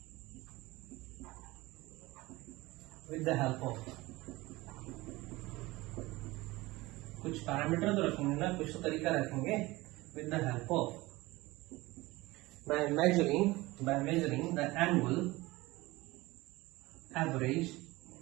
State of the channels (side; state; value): left; quieter; 20.5 dB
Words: with the help of कुछ पैरामीटर तो रखेंगे ना, कुछ तो तरीका रखेंगे, with the help of by measuring the annual average